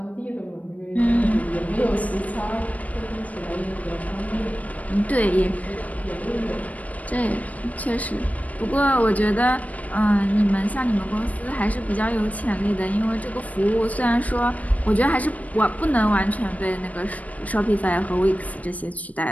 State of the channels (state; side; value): late; right; 0.070 ms